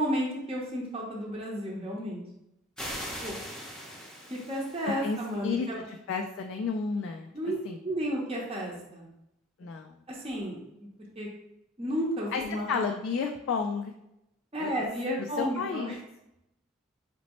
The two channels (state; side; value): normal; both; correlation 0.42